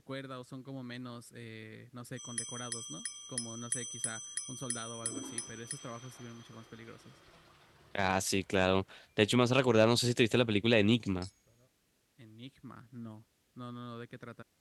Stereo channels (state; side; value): identical; both; correlation 1.00